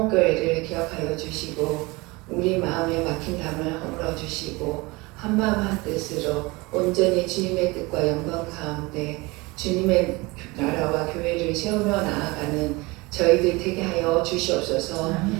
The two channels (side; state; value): left; quieter; 24.0 dB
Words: 기억하여 주시고 우리 마음에 막힌 담을 허물어 주시고 한마음 한뜻으로 온전히 주님의 뜻과 영광 가운데 주님의 나라와 교회를 세우며 나아가는 저희들 되게 하여 주시옵소서.